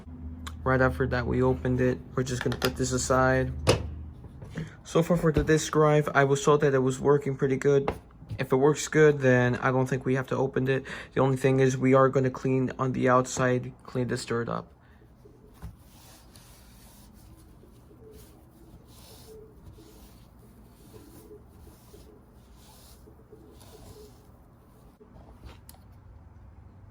Right after that we opened it, we're just gonna put this aside. So far for the disk drive, I was told that it was working pretty good. If it works good, then I don't think we have to open it. The only thing is we are gonna clean on the outside, clean this dirt up.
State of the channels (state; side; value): identical; both; correlation 1.00